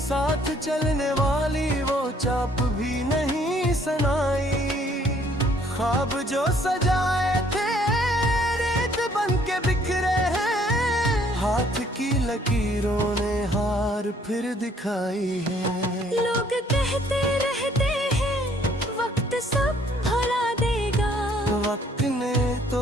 चलने वाली वो चाप भी नहीं सनाई। ख्वाब जो सजाए थे रेत बन के बिखरे हैं, हाथ की लकीरों ने हार फिर दिखाई है। लोग कहते रहते हैं वक्त सब भुला देगा, वक्त ने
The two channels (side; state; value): both; normal; correlation 0.62